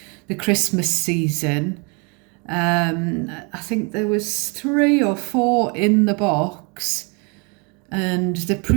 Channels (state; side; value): quieter; left; 32.8 dB